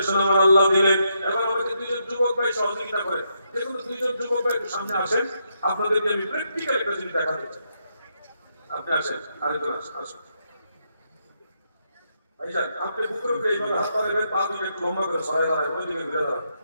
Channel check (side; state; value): both; inverted; correlation -0.79